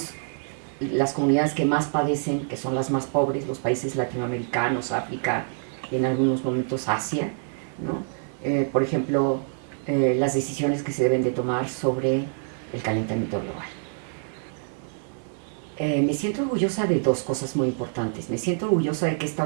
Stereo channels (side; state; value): left; silent; digital silence